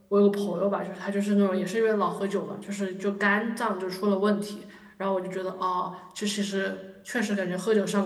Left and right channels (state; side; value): identical; both; correlation 1.00